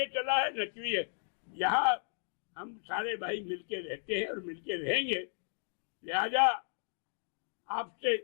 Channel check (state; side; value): silent; right; 55 dB below the other